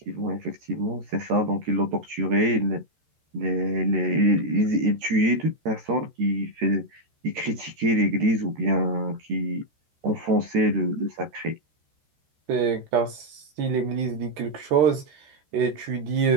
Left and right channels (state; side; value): late; left; 13 ms